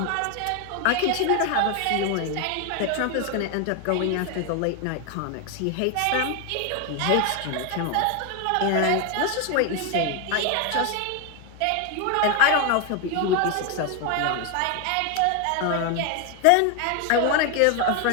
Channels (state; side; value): different; both; correlation 0.01